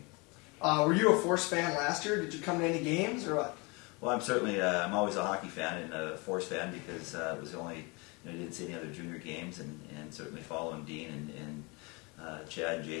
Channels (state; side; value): quieter; right; 28.2 dB